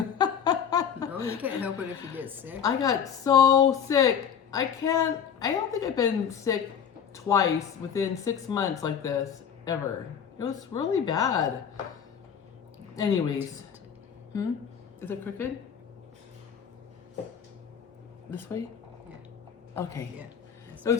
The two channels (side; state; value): right; quieter; 7.8 dB